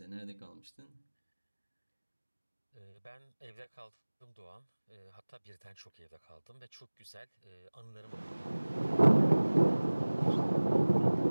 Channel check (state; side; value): inverted; both; correlation -1.00